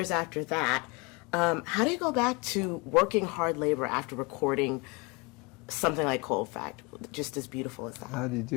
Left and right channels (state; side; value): quieter; right; 28.5 dB